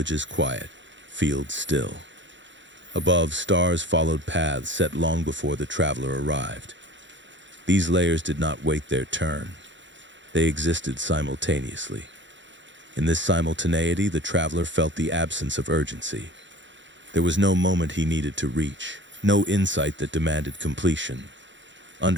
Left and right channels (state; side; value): late; left; 0.54 ms